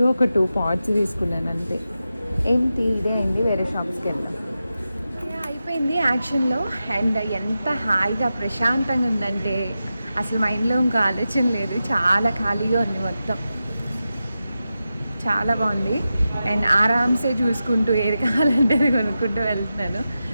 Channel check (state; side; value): inverted; both; correlation -0.91